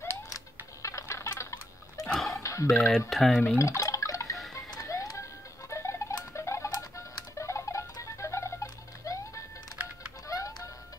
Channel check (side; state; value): both; normal; correlation 0.78